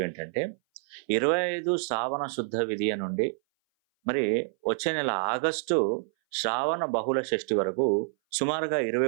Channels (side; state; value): left; silent; 58 dB below the other